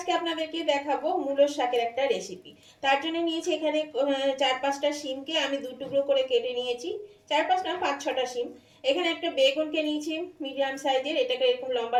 আপনাদেরকে দেখাবো মূলোর শাকের একটা রেসিপি। তার জন্য নিয়েছি এখানে 4-5টা শিমকে আমি দু টুকরো করে কেটে নিয়েছি। 4-5 না 5-6টা শিম। এখানে একটা বেগুনকে নিয়েছি মিডিয়াম সাইজের, এটাকে এরকম লম্বা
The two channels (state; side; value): identical; both; correlation 1.00